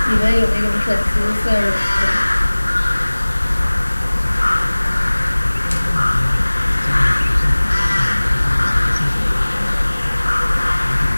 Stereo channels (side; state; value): both; inverted; correlation -1.00